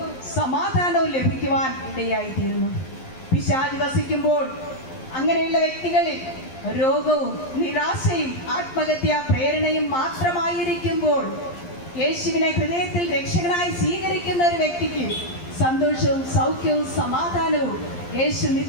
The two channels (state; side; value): late; right; 11 ms